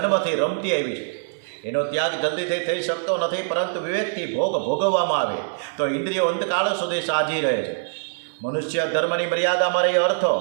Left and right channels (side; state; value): left; silent; 63 dB below the other